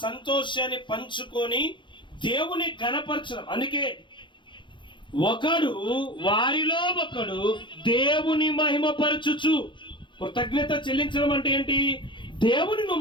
సంతోషాన్ని పంచుకొని దేవుని ఘనపరచడం. అందుకే ఒకడు వారిలో ఒకడు దేవుని మహిమపరచుచు. కృతజ్ఞత చెల్లించడం అంటే ఏంటి? దేవుని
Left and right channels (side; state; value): right; late; 0.23 ms